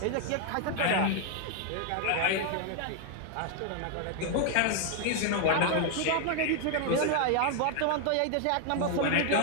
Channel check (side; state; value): both; different; correlation 0.00